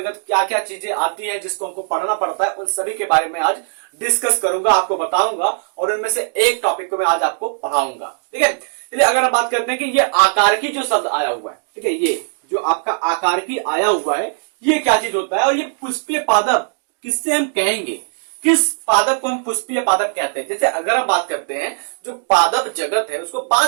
क्या क्या चीजें आती हैं जिसको हमको पढ़ना पड़ता है, उन सभी के बारे में आज डिस्कस करूंगा, आपको बताऊंगा और उनमें से एक टॉपिक को मैं आज आपको पढ़ाऊंगा। ठीक है, चलिए अगर हम बात करते हैं कि ये आकार की जो शब्द आया हुआ है, ठीक है, ये जो आपका आकार की आया हुआ है ये क्या चीज होता है और ये पुष्पीय पादप किससे हम कहेंगे, किस पादप को हम पुष्पीय पादप कहते हैं। जैसे अगर हम बात करते हैं जो पादप जगत है उसको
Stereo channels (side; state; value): left; silent; digital silence